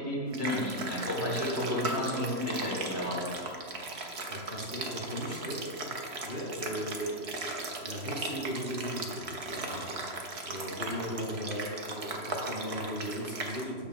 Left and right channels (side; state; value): left; late; 3.0 ms